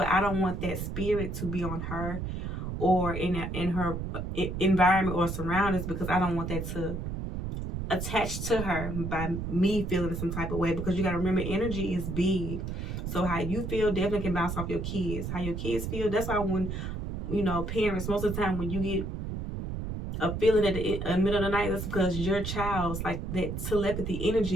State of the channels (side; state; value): right; noise; rumble, 5 dB below the sound